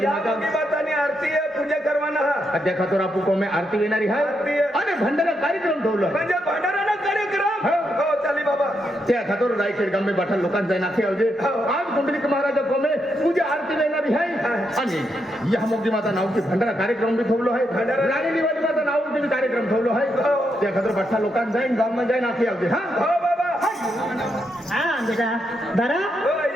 माता बातानी आरती आहे पूजा करवाना हा अध्या खातोर आपू कोमे आरती येणारी आहे आणि भंडारा कार्यक्रम ठेवलं म्हणजे भांडाराना कार्यक्रम हो चाली बाबा त्या खातोर रायखेड गामे बाठा लोकांचा नाखे आवजे आज कुंडलिक महाराज कोमे पूजा आरती येणारी आहे आणि या मोठी माता नावची भंडारा कार्यक्रम बी ठेवलो आहे राणी दिवाळी माता नावची कार्यक्रम ठेवलो आहे त्या खातोर बाठा लोकांचा जाईन गावમાં जाईन नाखे आवजे हा हो बाबा हा बेटा दरा हो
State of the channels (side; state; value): both; normal; correlation 0.81